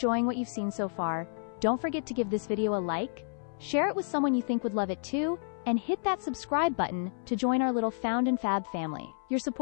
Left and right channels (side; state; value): right; silent; 57 dB below the other